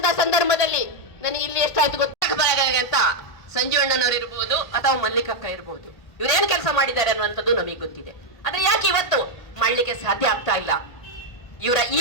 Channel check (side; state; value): right; late; 1.8 ms